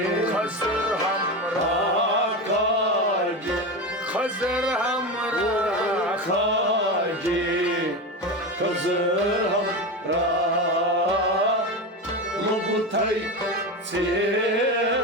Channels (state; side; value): normal; both; correlation 0.20